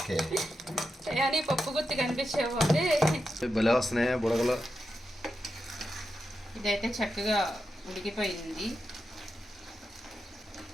కానీ పప్పు గుత్తి కనిపించేపోతే భలే వస్తున్నాయి బుడగలు. ఇదైతే చక్కగా ఉడికిపోయింది,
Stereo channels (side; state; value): both; normal; correlation 0.88